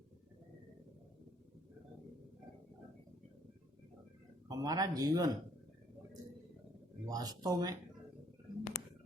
हमारा जीवन वास्तव में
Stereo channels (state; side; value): normal; both; correlation 0.64